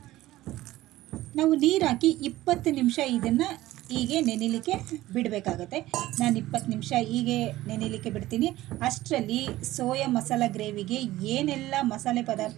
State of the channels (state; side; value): quieter; left; 16.2 dB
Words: ನಾವು ನೀರು ಹಾಕಿ 20 ನಿಮಿಷ ಇದನ್ನು ಹೀಗೆ ನೆನೆಯಲಿಕ್ಕೆ ಬಿಡಬೇಕಾಗತ್ತೆ. ನಾನು 20 ನಿಮಿಷ ಹೀಗೆ ನೆನೆಯಲಿಕ್ಕೆ ಬಿಡ್ತೀನಿ. ಅಷ್ಟರಲ್ಲಿ ಸೋಯಾ ಮಸಾಲ ಗ್ರೇವಿಗೆ ಏನೆಲ್ಲ ಮಸಾಲೆ